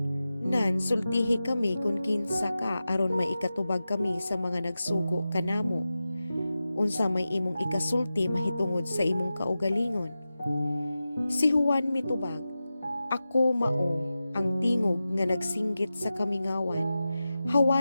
nan sultihi kami kung kinsa ka aron may ikatubag kami sa mga nagsugo kanamo. Unsa may imong ikasulti mahitungod sa imong kaugalingon? Si Juan mitubag, ako mao ang tingog nga nagsinggit sa kamingawan,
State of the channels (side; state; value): both; inverted; correlation -0.93